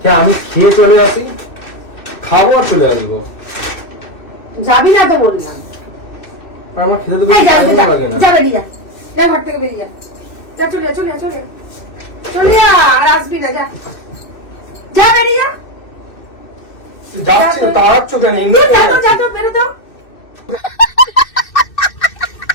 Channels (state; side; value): late; right; 2.6 ms